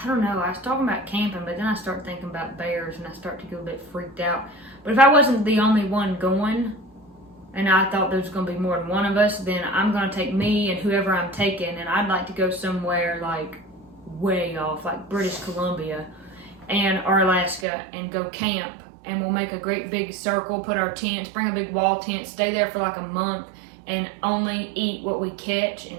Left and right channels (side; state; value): left; drops out; at 17.7 s